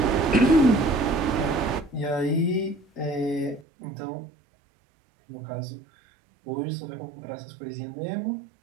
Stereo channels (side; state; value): left; drops out; at 3.7 s